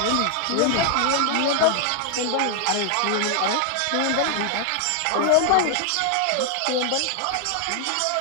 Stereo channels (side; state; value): both; different; correlation 0.00